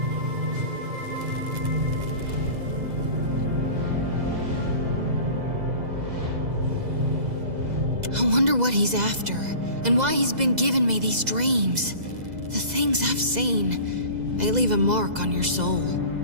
I wonder what he's after, and why he's been giving me these dreams. The things I've seen, they leave a mark on your soul.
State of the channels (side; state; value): left; late; 2.0 ms